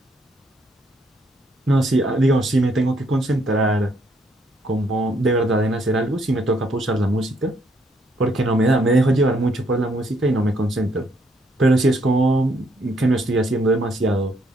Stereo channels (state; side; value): normal; both; correlation 0.71